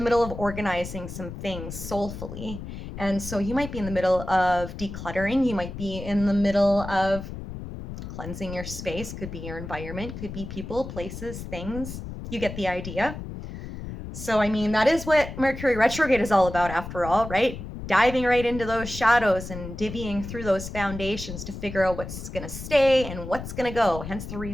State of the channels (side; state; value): left; noise; rumble, 9 dB below the sound